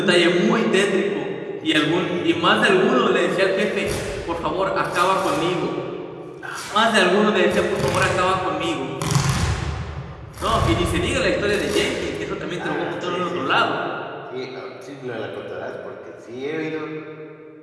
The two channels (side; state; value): both; identical; correlation 1.00